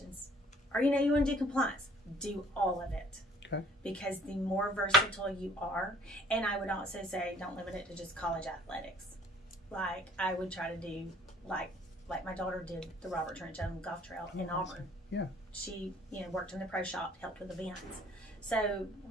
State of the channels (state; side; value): normal; both; correlation 0.56